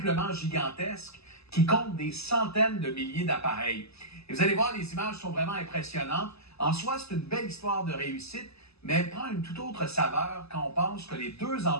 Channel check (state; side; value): late; right; 0.79 ms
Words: gigantesque qui compte des centaines de milliers d'appareils. Et vous allez voir, les images sont vraiment impressionnantes. En soi, c'est une belle histoire de réussite, mais elle prend une toute autre saveur quand on pense que les deux